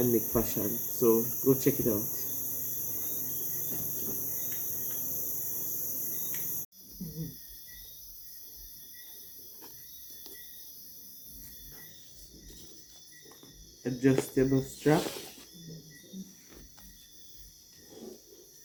Make Fashion. So go check it out. Adjustable strap.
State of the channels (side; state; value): both; identical; correlation 1.00